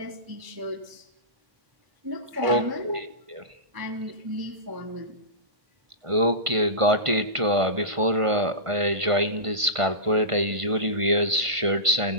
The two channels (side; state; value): left; late; 1.5 ms